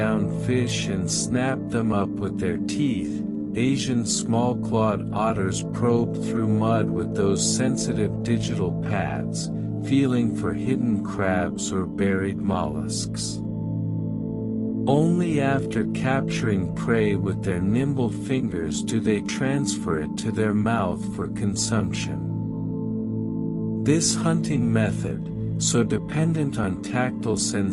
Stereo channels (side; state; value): both; identical; correlation 1.00